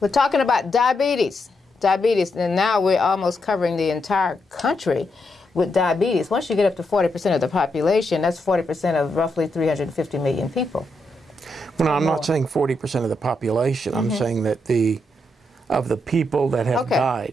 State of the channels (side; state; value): both; normal; correlation 0.81